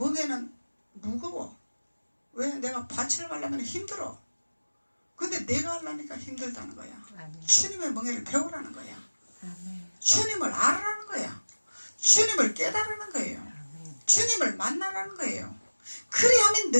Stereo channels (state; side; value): inverted; both; correlation -1.00